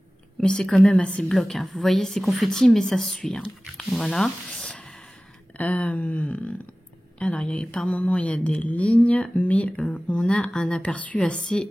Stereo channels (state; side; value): normal; both; correlation 0.97